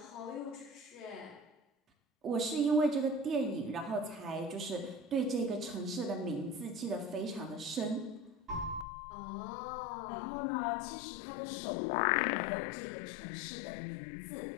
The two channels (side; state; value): right; drops out; at 8.8 s